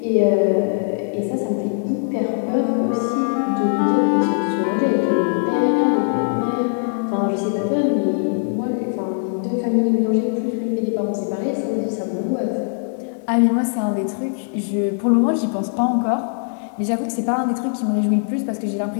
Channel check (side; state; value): right; silent; digital silence